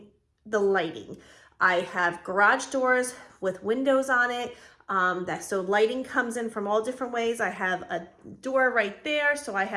the lighting. I have garage doors with windows on it. So lighting comes in from all different ways. I have a door right there, so I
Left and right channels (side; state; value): both; identical; correlation 1.00